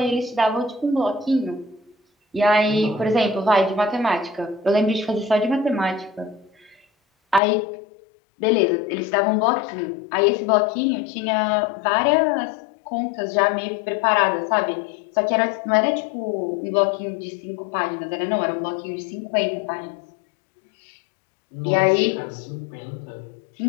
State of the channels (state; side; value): drops out; right; at 7.4 s